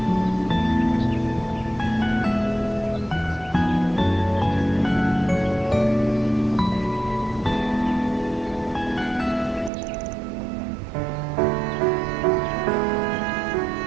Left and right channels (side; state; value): left; drops out; at 9.7 s